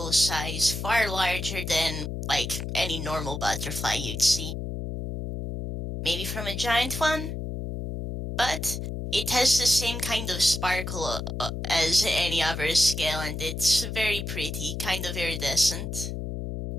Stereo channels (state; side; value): noise; left; hum, 5 dB below the sound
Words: size, far larger than, like, any normal butterfly you'd see. Maybe from a giant one? But it has the same kind of sparkle as any other scale, and it's very pretty, kind of iridescent.